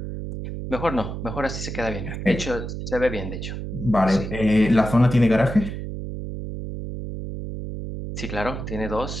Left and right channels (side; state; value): right; noise; hum, 6 dB below the sound